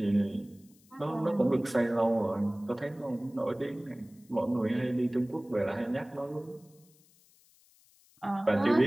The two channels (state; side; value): noise; left; hiss, 30 dB below the sound